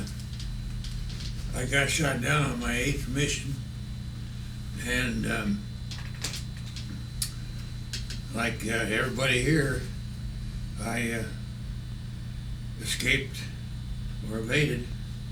got shot down on my 8th mission, and like everybody here, I escaped or evaded.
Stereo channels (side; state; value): both; identical; correlation 1.00